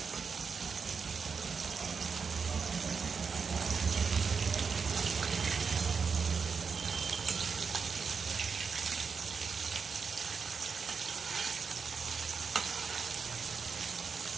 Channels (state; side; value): quieter; left; 5.5 dB